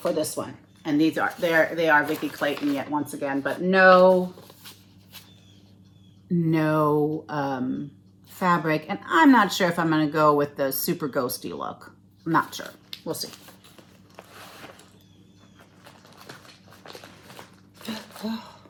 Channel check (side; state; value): both; identical; correlation 1.00